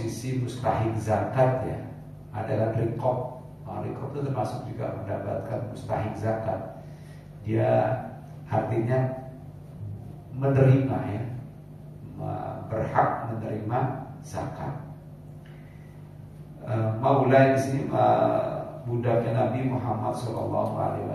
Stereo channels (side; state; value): both; identical; correlation 1.00